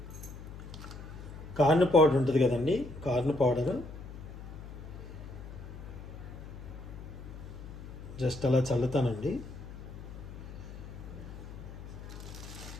కార్న్ పౌడర్ ఉంటుంది కదండి, కార్న్ పౌడర్ జస్ట్ అలా చల్లుతానండి.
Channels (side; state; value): left; noise; hum, 12 dB below the sound